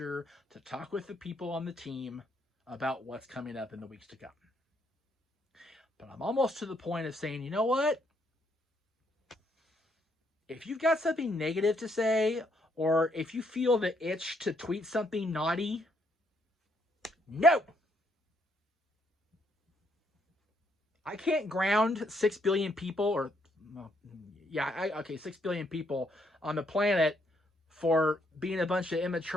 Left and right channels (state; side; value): normal; both; correlation 0.72